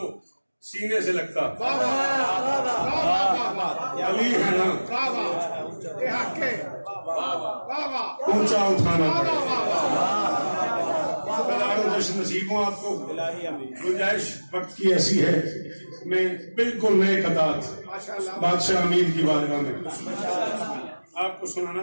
सीने से लगता, अली है ना ऊंचा उठाना पड़ेगा। जश्न नसीब हूँ आपको। गुंजाइश वक्त की ऐसी है, मैं बिल्कुल नए कतार बादशाह अमीर की बारगाह में आपको सुनाना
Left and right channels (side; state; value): both; inverted; correlation -1.00